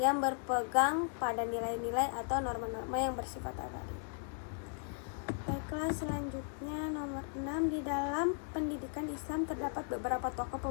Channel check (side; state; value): right; silent; 53 dB below the other